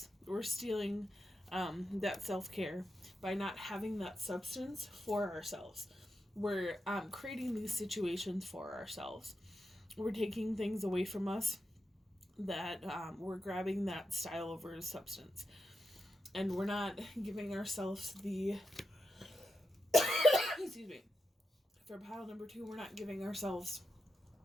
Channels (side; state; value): both; normal; correlation 0.87